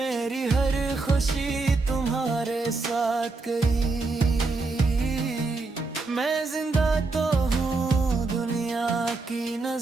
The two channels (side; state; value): left; quieter; 3.7 dB